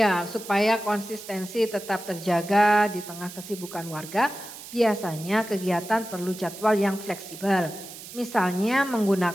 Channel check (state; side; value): noise; right; hiss, 14 dB below the sound